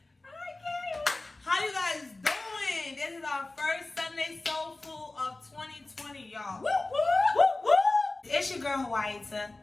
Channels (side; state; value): right; quieter; 3.0 dB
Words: How you guys doing? This is our first Sunday Soul Food of 2020, y'all. Woo, woo, woo, woo. It's your girl, WHATS, and